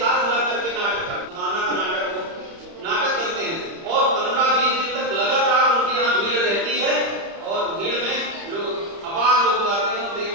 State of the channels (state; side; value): late; left; 30 ms